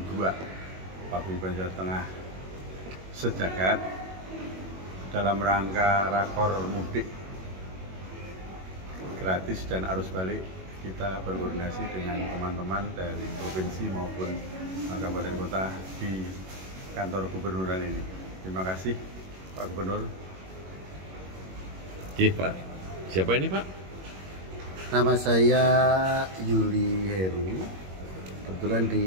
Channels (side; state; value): left; late; 21 ms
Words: 2 Paguyuban Jawa Tengah Sejagat dalam rangka rakor mudik gratis dan arus balik. Kita berkoordinasi dengan teman-teman dari provinsi maupun kabupaten kota di kantor gubernuran ini. Terima kasih Pak Gubernur. Oke Pak, siapa ini Pak? Nama saya Yuli Heru. Kebetulan di